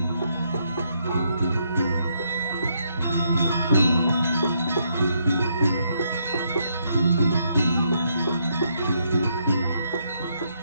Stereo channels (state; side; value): inverted; both; correlation -0.75